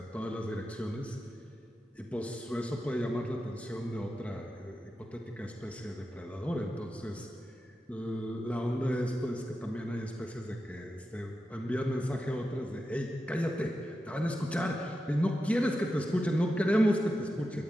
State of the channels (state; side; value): normal; both; correlation 0.90